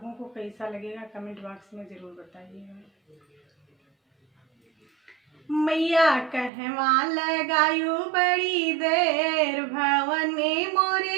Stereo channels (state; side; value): drops out; left; at 6.5 s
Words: को कैसा लगेगा कमेंट बॉक्स में ज़रूर बताइएगा। मैया कहवा लगायू बड़ी देर, भवने